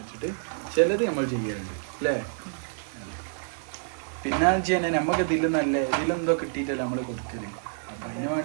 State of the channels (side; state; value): left; silent; 59 dB below the other